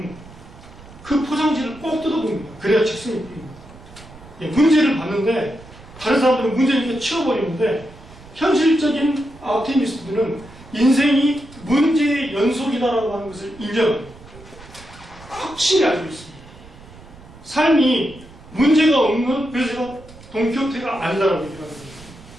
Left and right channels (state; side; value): noise; right; rumble, 20 dB below the sound